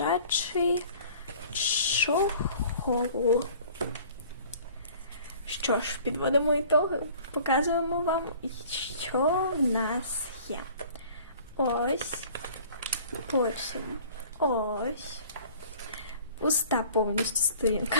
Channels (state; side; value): inverted; both; correlation -0.49